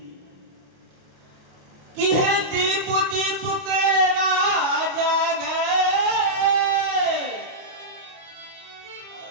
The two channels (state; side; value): late; left; 29 ms